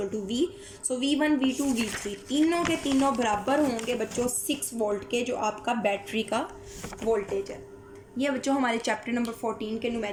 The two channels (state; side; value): identical; both; correlation 1.00